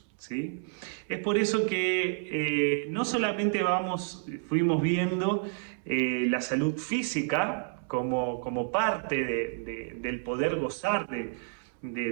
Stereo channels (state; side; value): silent; left; 58 dB below the other